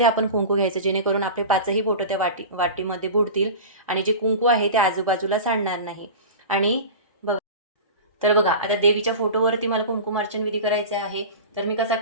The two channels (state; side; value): inverted; both; correlation -0.31